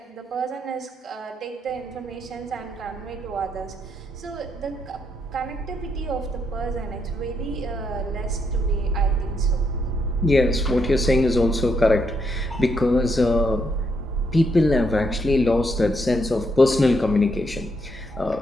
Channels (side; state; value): both; normal; correlation 0.77